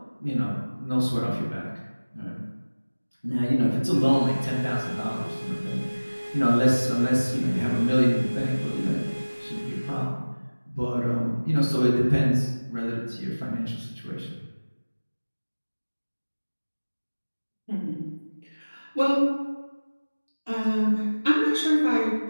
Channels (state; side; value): inverted; both; correlation -1.00